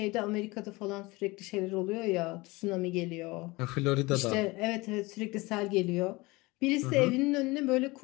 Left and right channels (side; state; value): right; quieter; 23.0 dB